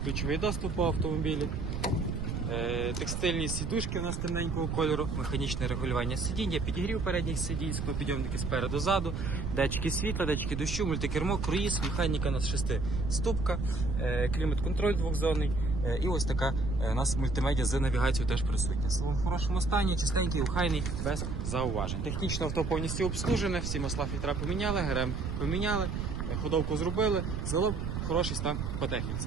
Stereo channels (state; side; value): noise; right; rumble, 3 dB below the sound